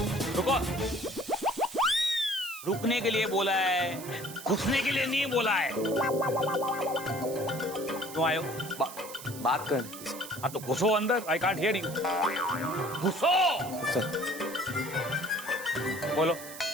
रुको, रुकने के लिए बोला है, घुसने के लिए नहीं बोला है। तुम आयो बात करनी। हाँ तो घुसो अंदर, आई कांट हियर यू। घुसो सर, बोलो।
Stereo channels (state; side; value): noise; right; hiss, 13 dB below the sound